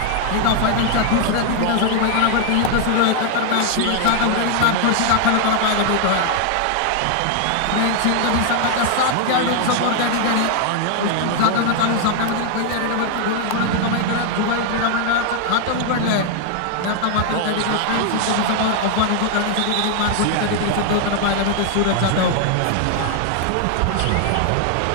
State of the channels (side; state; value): both; different; correlation 0.00